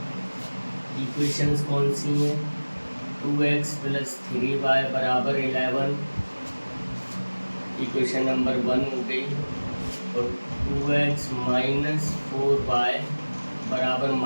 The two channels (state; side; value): inverted; both; correlation -1.00